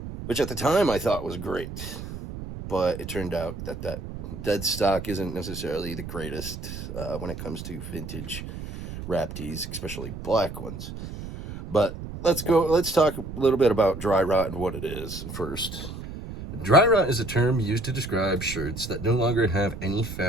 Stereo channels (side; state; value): right; noise; rumble, 9 dB below the sound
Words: which at the time I thought was great. But it turned out that that dead stock isn't necessarily the greatest when it comes to vintage wrap tees, especially black ones. But let's talk a little bit about dry rot and what it is first. Dry rot is a term used to describe shirts that no longer have any